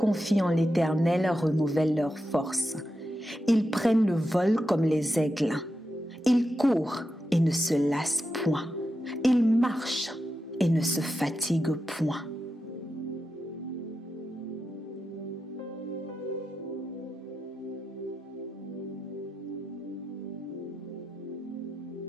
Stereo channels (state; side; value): normal; both; correlation 0.88